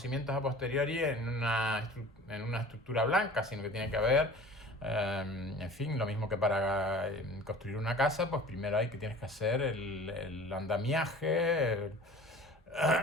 a posteriori en una estructura blanca, sino que tiene que haber, en fin, lo mismo que para construir una casa, pues primero tienes que hacer el andamiaje,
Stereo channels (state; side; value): normal; both; correlation 0.43